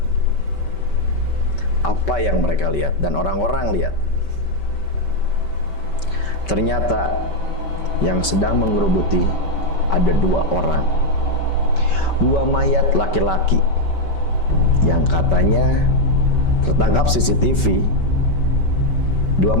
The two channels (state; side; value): late; right; 5.2 ms